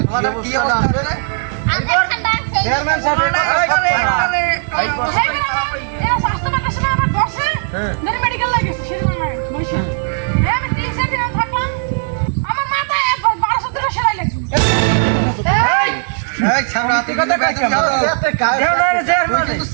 কি অবস্থা রে চেয়ারম্যান সাহেব মেডিকেল লাগেছে আমি 3 দিন থাকলাম আমার মাথায় 1200 টাকা সেলাই লাগছে এই ছামড়া তুই কথা কই কেমন তুই কিন্তু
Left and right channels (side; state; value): left; silent; 69 dB below the other